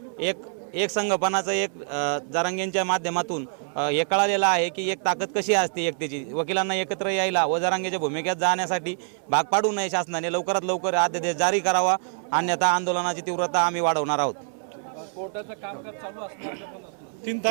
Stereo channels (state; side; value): silent; left; 61 dB below the other